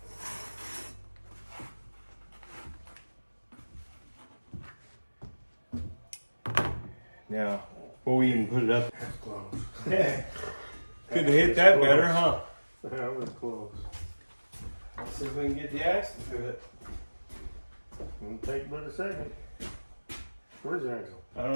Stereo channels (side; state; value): both; inverted; correlation -1.00